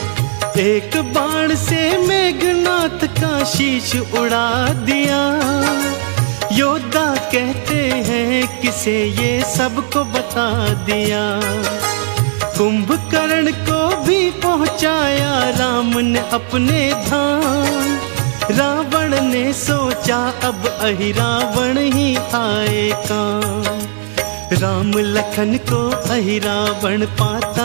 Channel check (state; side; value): silent; left; digital silence